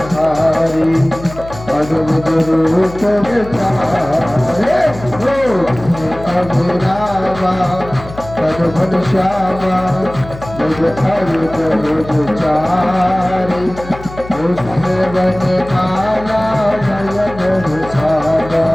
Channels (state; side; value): noise; left; hum, 15 dB below the sound